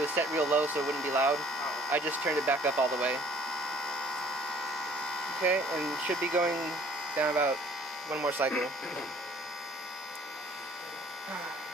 set real low so it wouldn't be loud. I just turned it back up all the way. Okay, and should be going down about one more cycle.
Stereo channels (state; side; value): normal; both; correlation 0.55